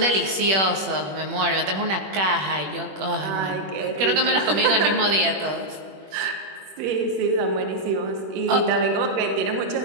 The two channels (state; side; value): late; left; 21 ms